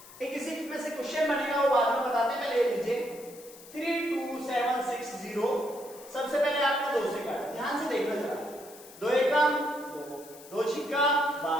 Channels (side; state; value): left; noise; hiss, 19 dB below the sound